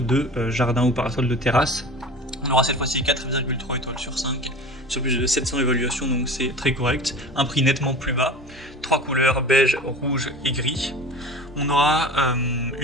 de jardin ou parasol de terrasse. On aura cette fois-ci 4,3 étoiles sur 5 sur plus de 700 évaluations, donc c'est très correct. Un prix nettement plus bas, 3 couleurs beige, rouge et gris. On aura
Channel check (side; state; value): both; normal; correlation 0.37